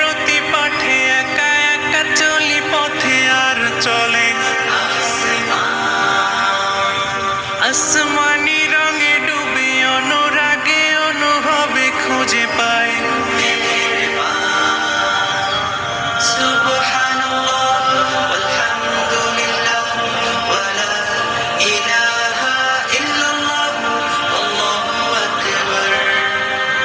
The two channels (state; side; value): identical; both; correlation 1.00